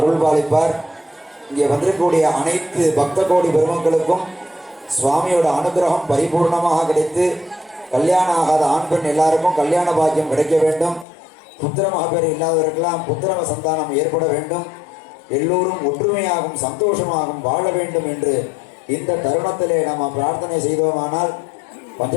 பாலிப்பார். இங்கே வந்திருக்கக்கூடிய அனைத்து பக்த கோடி பெருமக்களுக்கும் சுவாமியோட அனுகிரகம் பரிபூர்ணமாக கிடைத்து கல்யாணம் ஆகாத ஆண் பெண் எல்லாருக்கும் கல்யாண பாக்கியம் கிடைக்க வேண்டும். புத்திர மகப்பேறு இல்லாதவர்களெல்லாம் புத்திர சந்தானம் ஏற்பட வேண்டும். எல்லோரும் ஒற்றுமையாகவும் சந்தோஷமாகவும் வாழ வேண்டும் என்று இந்த தருணத்திலே நாம் பிரார்த்தனை செய்தோமானால்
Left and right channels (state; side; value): drops out; right; at 11.1 s